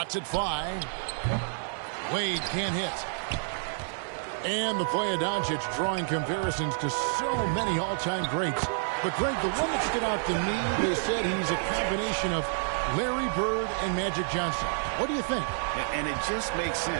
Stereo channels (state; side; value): silent; left; digital silence